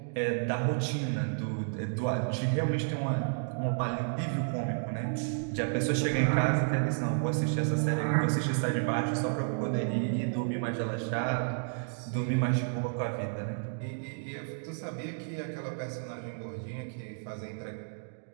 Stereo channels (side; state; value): left; silent; digital silence